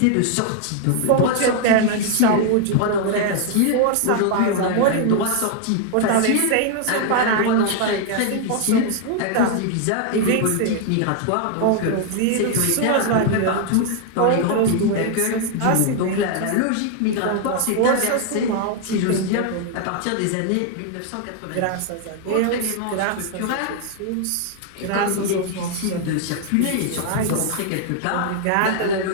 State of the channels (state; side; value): different; both; correlation 0.00